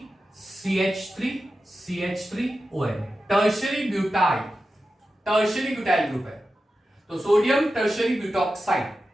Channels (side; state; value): both; normal; correlation 0.92